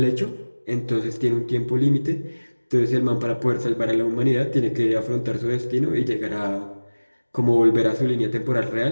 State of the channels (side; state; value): both; inverted; correlation -1.00